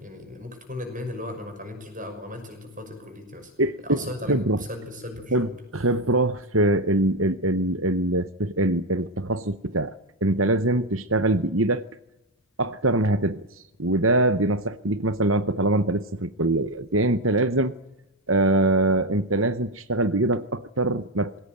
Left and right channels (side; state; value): both; normal; correlation 0.09